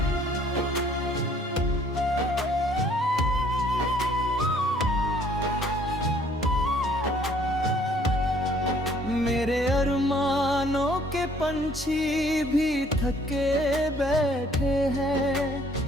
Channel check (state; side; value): normal; both; correlation 0.60